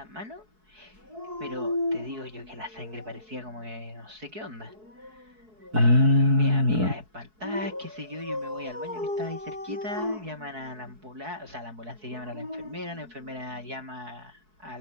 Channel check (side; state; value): left; late; 4.7 ms